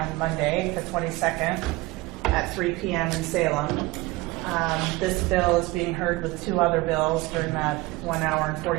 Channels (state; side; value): quieter; left; 20.3 dB